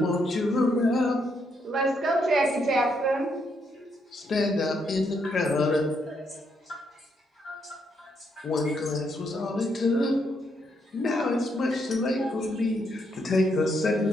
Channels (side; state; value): both; normal; correlation 0.76